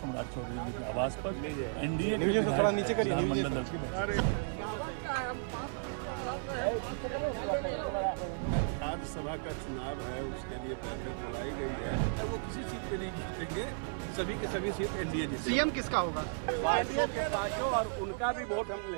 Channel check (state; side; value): silent; left; 55 dB below the other